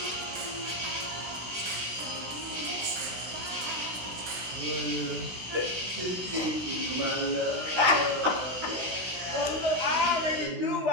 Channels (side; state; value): left; late; 16 ms